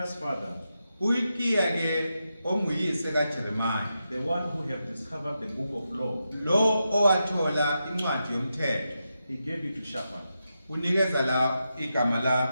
father, uHilikiya ke onguyise kaJeremiah, the one who have discovered the book of law, lo owathola incwadi yomthetho, he gave it to Shaphan. unikeza la igama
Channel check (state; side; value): inverted; both; correlation -0.87